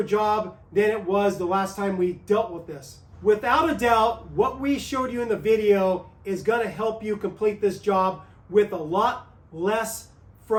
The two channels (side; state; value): both; identical; correlation 1.00